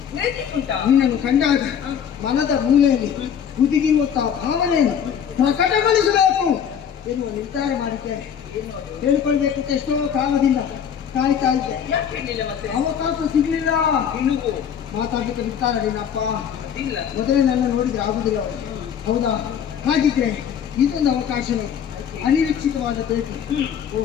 ಉಂಟಾ? ನಿನ್ನನ್ನು ಕಂಡಾಗ ಮನದ ಮೂಲೆಯಲ್ಲಿ ಹುದುಗಿರುವಂತಹ ಭಾವನೆಯನ್ನು ಪ್ರಕಟಗೊಳಿಸಬೇಕು ಎನ್ನುವ ನಿರ್ಧಾರ ಮಾಡಿದ್ದೇನೆ. ಹೇಳ್ಕೊಳ್ಬೇಕು ಅಂತ ಎಷ್ಟೋ ಕಾಲದಿಂದ ಕಾಯ್ತಾ ಇದ್ದೆ. ಯಾಕೆ ಹೇಳಿಲ್ಲ ಮತ್ತೆ? ಅವಕಾಶ ಸಿಗ್ಲಿಲ್ಲ. ನಿನಗೂ ಮಾತಾಡ್ಲಿಕ್ಕೆ ಬಿಡ್ತಾರ ನಿನ್ನಪ್ಪ? ಇಲ್ಲ. ಮೊದಲೇ ನನ್ನ ನೋಡಿದ್ರೆ ಆಗುದಿಲ್ಲ ಅವರಿಗೆ. ಹೌದಾ? ಹಾಗಿದ್ರೆ ಇದೊಂದು ಅವಕಾಶವೇ, ಅನಿರೀಕ್ಷಿತವಾದ ಭೇಟಿ. ಓ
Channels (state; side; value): quieter; right; 8.3 dB